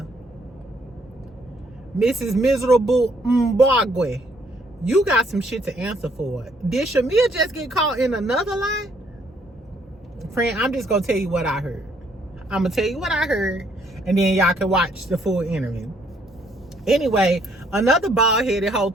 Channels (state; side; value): normal; both; correlation 0.67